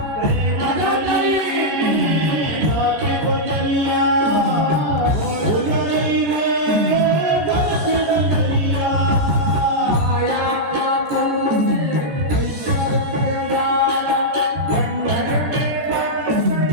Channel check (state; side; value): late; left; 14 ms